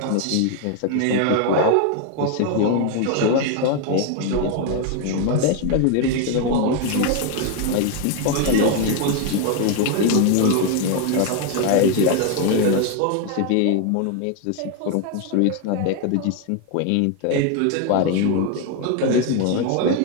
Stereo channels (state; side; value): different; both; correlation 0.01